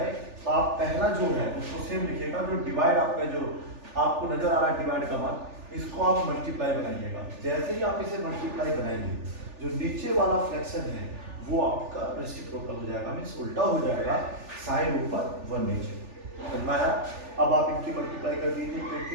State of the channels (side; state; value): left; late; 3.4 ms